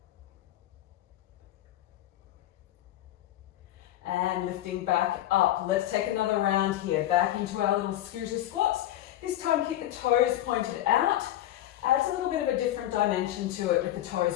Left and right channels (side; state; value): right; quieter; 13.5 dB